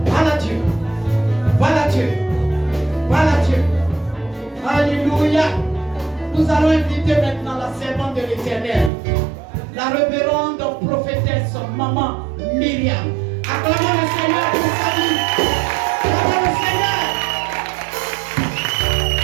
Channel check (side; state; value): left; drops out; at 8.9 s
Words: Parle à Dieu. Parle à Dieu. Parle à Dieu. Alléluia. Nous allons inviter maintenant la servante de l'Éternel, la révérende prophétesse maman Myriam. Acclamons le Seigneur pour sa vie. Acclamons le Seigneur.